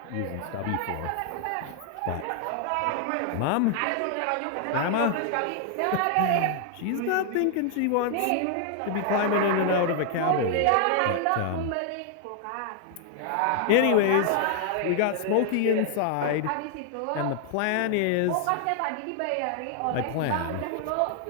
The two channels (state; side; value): different; both; correlation 0.00